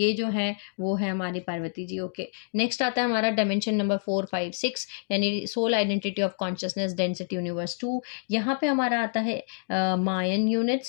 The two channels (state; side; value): silent; right; digital silence